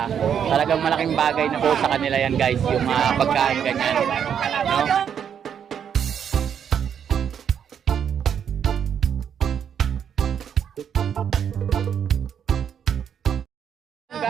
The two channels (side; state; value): left; quieter; 8.2 dB